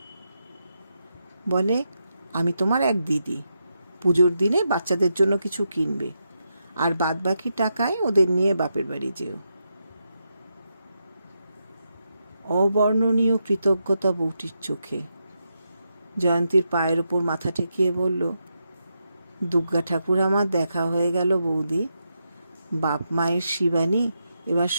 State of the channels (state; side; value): inverted; both; correlation -0.84